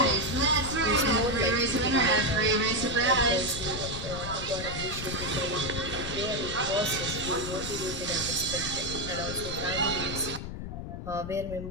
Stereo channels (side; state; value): left; noise; rumble, 8 dB below the sound